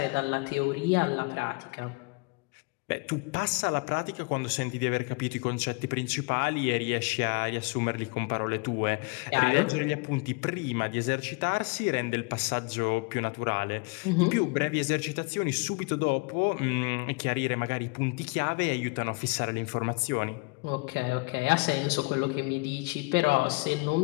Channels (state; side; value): quieter; right; 28.7 dB